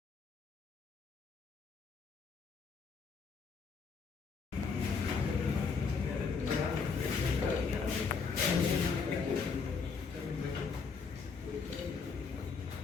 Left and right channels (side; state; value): right; quieter; 5.2 dB